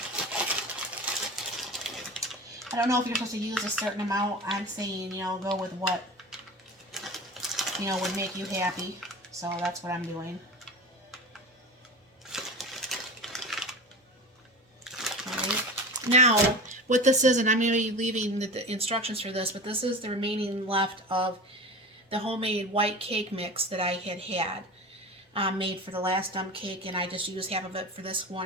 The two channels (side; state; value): both; normal; correlation 0.32